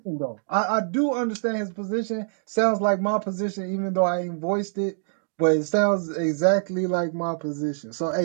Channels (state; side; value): silent; left; digital silence